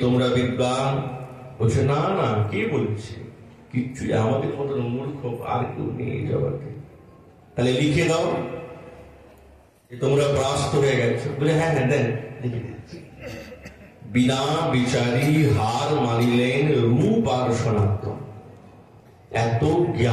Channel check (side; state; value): both; identical; correlation 1.00